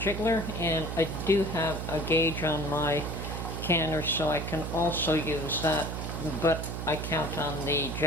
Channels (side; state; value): right; noise; hum, 5 dB below the sound